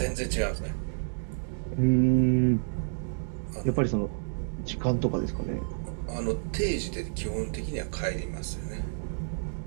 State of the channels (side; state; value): left; silent; digital silence